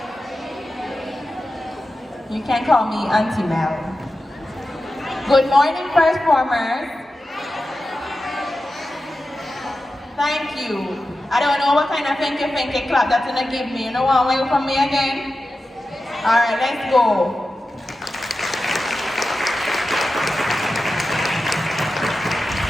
You can call me Auntie Mel. Good morning, first formers. Thank you. I don't know what kind of finky clap that's gonna give me. You know what way from me again? Alright, let's go.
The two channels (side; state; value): both; normal; correlation 0.93